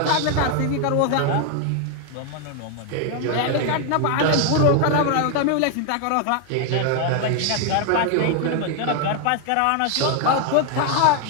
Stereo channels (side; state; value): both; different; correlation 0.00